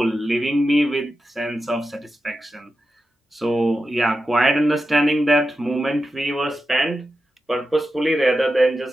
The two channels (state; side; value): normal; both; correlation 0.90